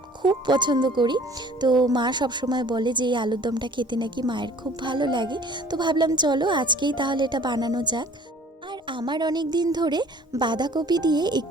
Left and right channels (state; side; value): normal; both; correlation 0.50